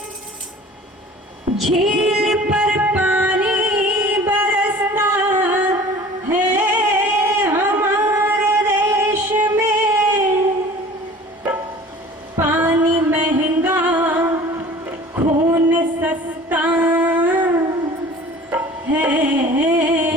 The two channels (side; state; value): both; normal; correlation 0.45